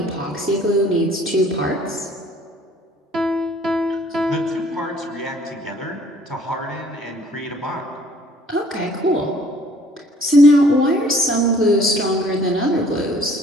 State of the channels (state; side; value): normal; both; correlation 0.57